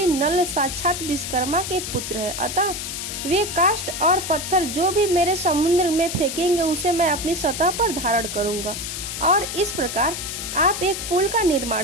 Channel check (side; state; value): left; noise; hiss, 6 dB below the sound